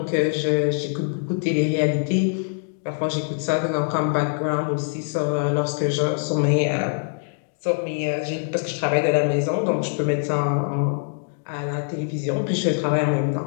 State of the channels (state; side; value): silent; right; digital silence